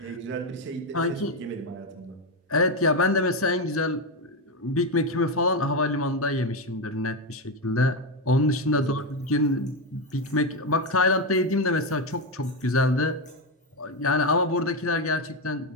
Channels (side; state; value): both; normal; correlation 0.10